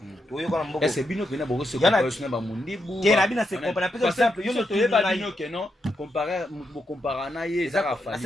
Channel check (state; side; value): normal; both; correlation 0.83